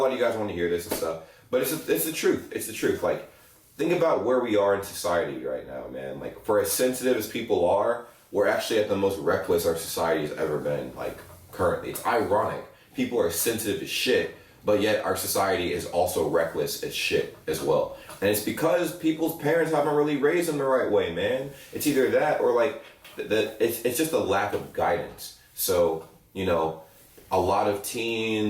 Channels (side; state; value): both; identical; correlation 1.00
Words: lot of you guys want to hear this and stuff, but it's the truth. It's the truth. Like, think about where we are in society right now, man. Like, for as sensitive as people are, we're actually at the most reckless our society has ever been, like, currently. It's ironic. People are sensitive as shit, but yet our society is also reckless as shit as well. And it's because people's parents haven't really raised them the right way, man. It's either that or, like, it's just a lack of guidance. So, a lot of